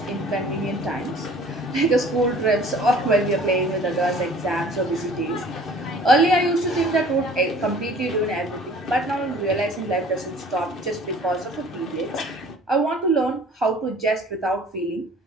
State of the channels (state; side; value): normal; both; correlation 0.50